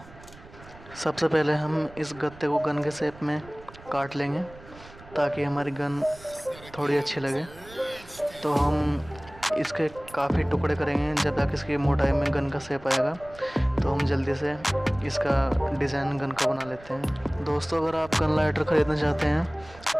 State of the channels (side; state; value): right; noise; rumble, 20 dB below the sound